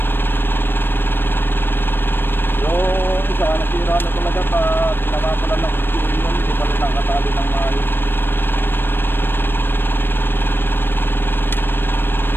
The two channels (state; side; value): late; right; 0.099 ms